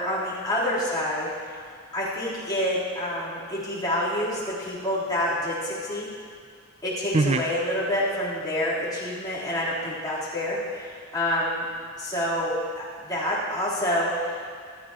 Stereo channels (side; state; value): both; normal; correlation 0.18